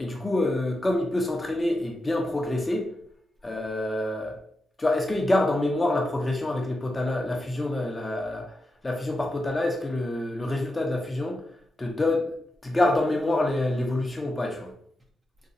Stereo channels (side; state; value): both; normal; correlation 0.88